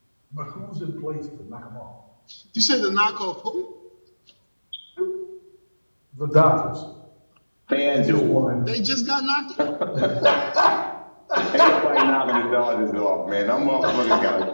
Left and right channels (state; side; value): inverted; both; correlation -1.00